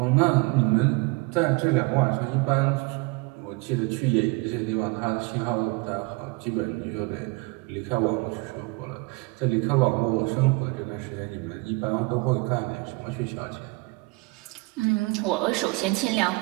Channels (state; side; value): quieter; left; 25.9 dB